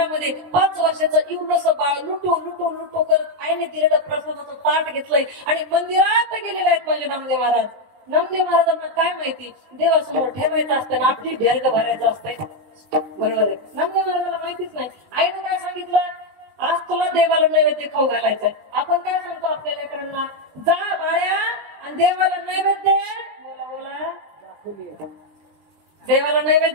5 वर्षाचं एवढंसं बाळ लुटो लुटो लुटो करत आईने दिलेलं प्रसादाचं ताट घेतलंय आणि मंदिरात गेलेले आहेत माझे नामदेव महाराज. नामदेव महाराजांना काय माहिती, देवासमोर ठेवायचं असतं ना आपली ढेरग भरायचं असतंय. बरोबर आहे. नामदेव महाराजांना माहितीच नाही. आईने काय सांगितलं, आज तुला देवाला नैवेद्य खाऊ घालायचंय. आपण काय सांगतो आपल्या लेकरांना, जा बाळ्या आणि देवाला नैवेद्य बोला देवाला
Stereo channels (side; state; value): left; late; 19 ms